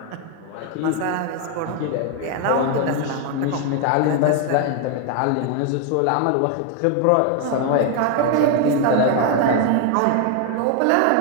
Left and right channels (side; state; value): both; different; correlation 0.01